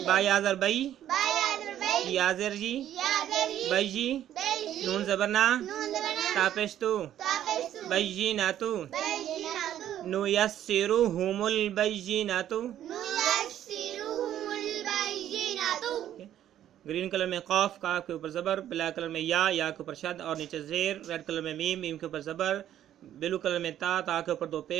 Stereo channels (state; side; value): quieter; left; 11.4 dB